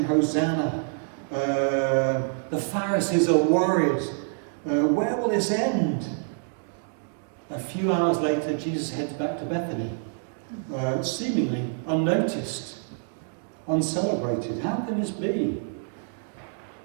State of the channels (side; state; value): left; silent; digital silence